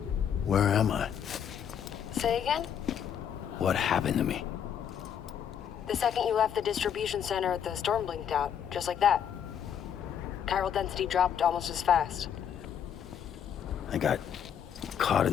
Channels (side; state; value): right; quieter; 8.6 dB